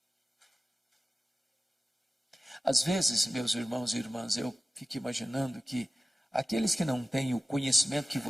Às vezes, meus irmãos e irmãs, eu fico imaginando que aqueles que não têm o conhecimento que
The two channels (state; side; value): normal; both; correlation 0.96